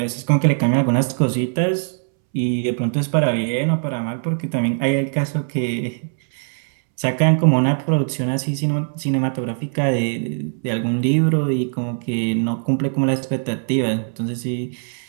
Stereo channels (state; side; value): silent; left; 65 dB below the other